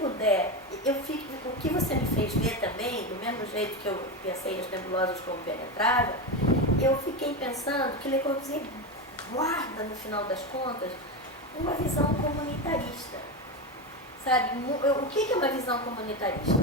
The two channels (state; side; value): normal; both; correlation 0.17